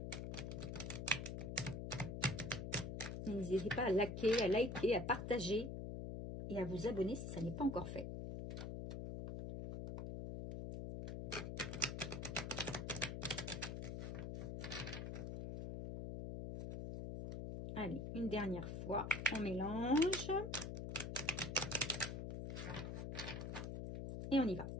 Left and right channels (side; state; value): left; noise; hum, 5 dB below the sound